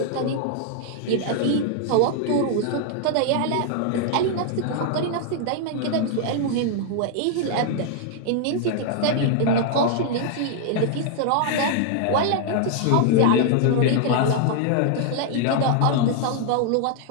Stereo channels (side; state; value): both; different; correlation 0.00